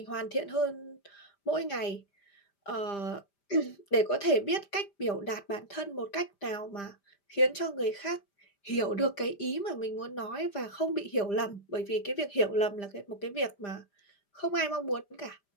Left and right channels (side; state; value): right; late; 5.0 ms